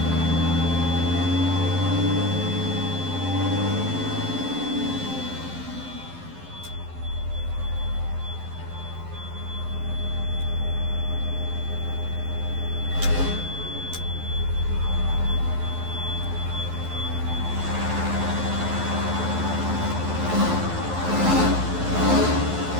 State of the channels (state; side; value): late; left; 11 ms